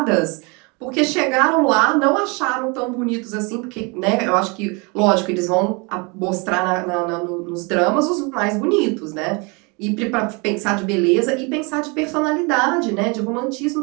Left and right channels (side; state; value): left; quieter; 30.1 dB